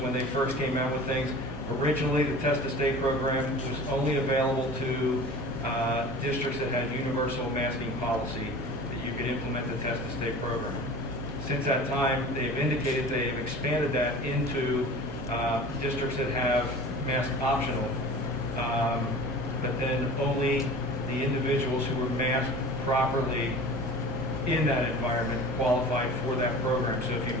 they first came out with things. Originally, the Test to Stay program was only available to districts that had universal masking policy, that you could implement the Test to Stay program. Since that time, they've indicated they've expanded that into districts that have mask optional, but then only the individuals who were masked properly in that environment qualified for that program. So if you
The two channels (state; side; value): normal; both; correlation 0.39